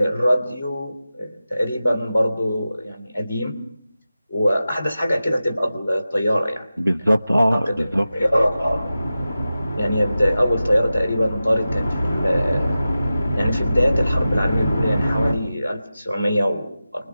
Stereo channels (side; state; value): both; inverted; correlation -0.94